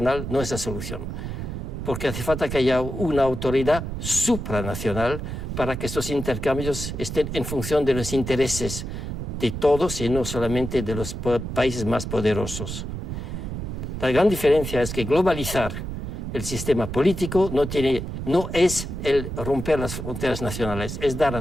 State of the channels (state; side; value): noise; right; rumble, 6 dB below the sound